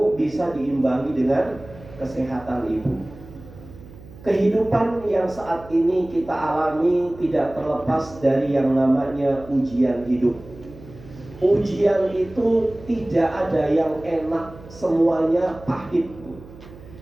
bisa diimbangi dengan kesehatan ibu. Kehidupan yang saat ini kita alami tidak terlepas dari yang namanya ujian hidup. Ujian itu tidak ada yang enak, semuanya pahit.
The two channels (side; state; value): right; noise; hum, 19 dB below the sound